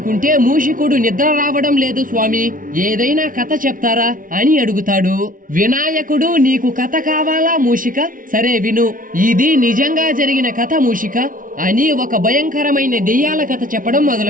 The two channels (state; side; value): late; left; 0.39 ms